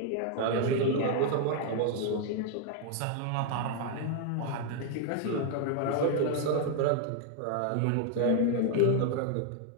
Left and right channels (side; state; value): both; different; correlation 0.00